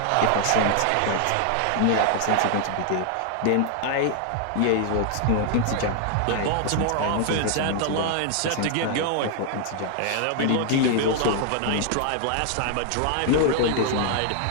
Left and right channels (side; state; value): both; different; correlation 0.00